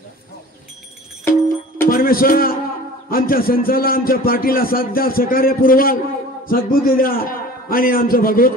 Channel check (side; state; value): both; normal; correlation 0.42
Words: आमच्या संचाला, आमच्या पार्टीला साथ द्या, सहकार्य पुरवाल, सद्बुद्धी द्या आणि आमचं